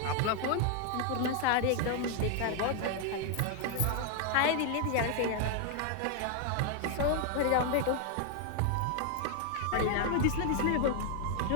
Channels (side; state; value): both; different; correlation 0.00